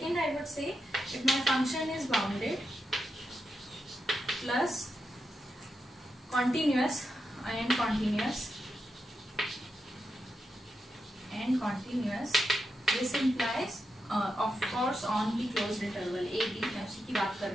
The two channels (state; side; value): normal; both; correlation 0.86